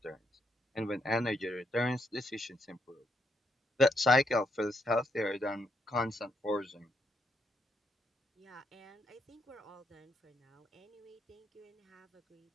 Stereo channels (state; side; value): normal; both; correlation 0.77